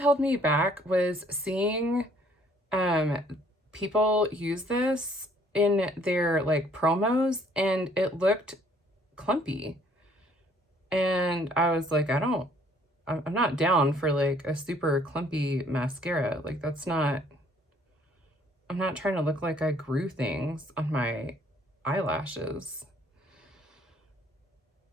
me back was seeing people use this in their like promos, and it looked clumpy. And I was like, I'm not down for like a super clumpy mascara. Like that's not, I'm not trying to look like I grew things on my eyelashes.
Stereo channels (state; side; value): normal; both; correlation 0.61